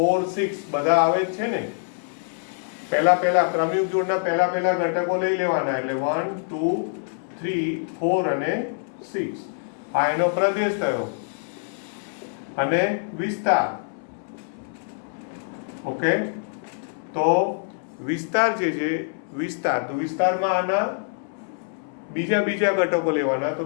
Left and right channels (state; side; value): silent; right; 61 dB below the other